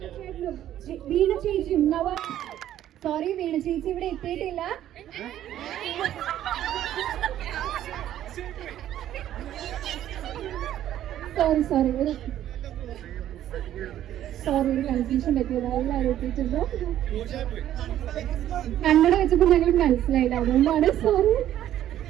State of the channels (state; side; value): quieter; left; 11.9 dB